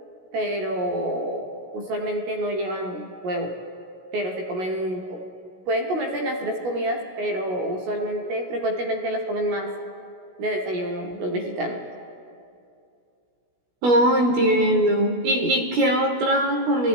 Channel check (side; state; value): left; late; 16 ms